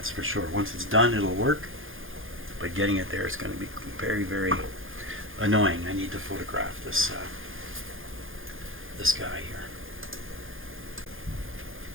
for sure. Once it's done, it'll work. But getting it there is going to be very, very annoying. I need to photograph this this guy here.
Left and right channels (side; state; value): left; late; 0.59 ms